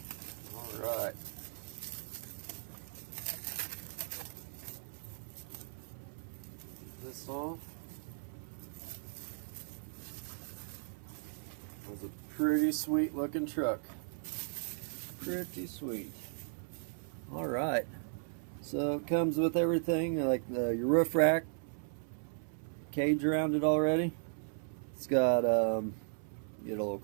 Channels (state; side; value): silent; left; 53 dB below the other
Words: Alright. This off. It was a pretty sweet looking truck. Pretty sweet. Alright. So it comes with everything, like your roof rack, cage around it already. It's got, get a little